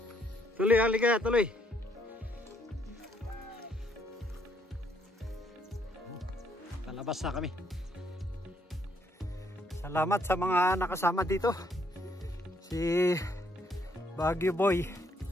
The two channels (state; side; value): normal; both; correlation 0.70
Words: Tuloy, halika, tuloy. Palabas na kami. Salamat sa mga nakasama dito. Si Baguio Boy